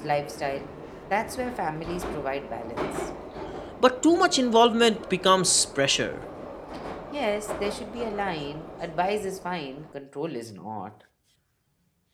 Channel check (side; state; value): both; identical; correlation 1.00